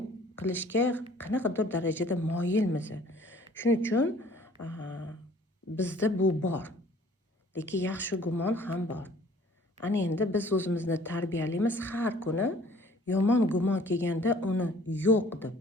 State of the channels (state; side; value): normal; both; correlation 0.54